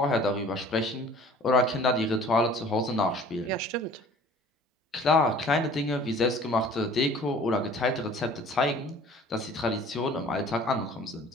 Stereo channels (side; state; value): both; normal; correlation 0.49